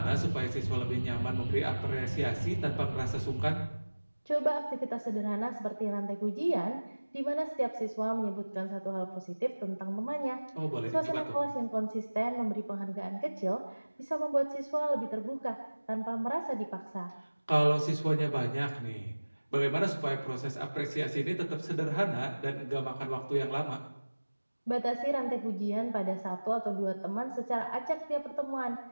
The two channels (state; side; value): inverted; both; correlation -1.00